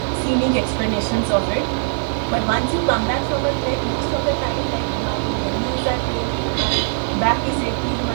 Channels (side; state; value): left; silent; digital silence